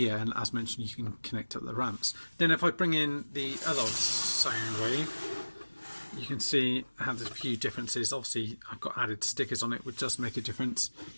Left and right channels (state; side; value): inverted; both; correlation -1.00